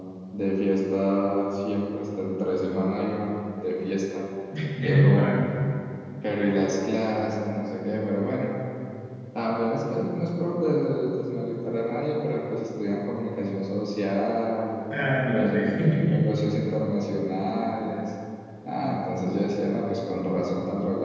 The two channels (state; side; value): identical; both; correlation 1.00